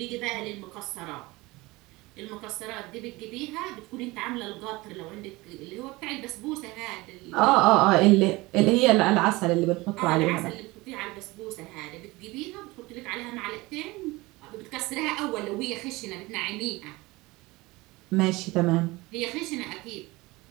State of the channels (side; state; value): left; quieter; 21.8 dB